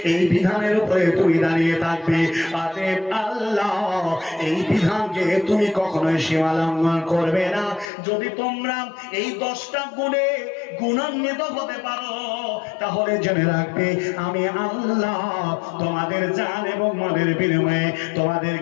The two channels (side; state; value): right; drops out; at 7.9 s